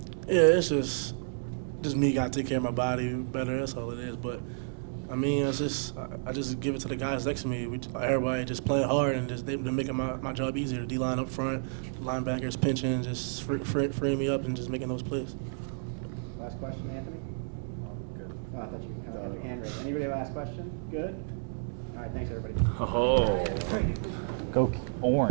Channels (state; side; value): silent; left; digital silence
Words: there. Yeah, it's just me got to take care of my body better. That's all it is. But I mean, I just give it to the guys next to me. Everybody just playing hard and they're making my job easier. The D-line up front, linebackers pinching, just freeing me up and just making those plays. Last question, Anthony. Good. Oh, I thought you. hand raised. Anybody have a last question? Good? All right, thanks, everybody. Oh. Go